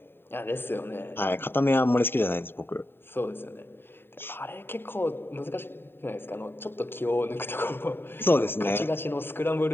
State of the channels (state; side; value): late; right; 0.11 ms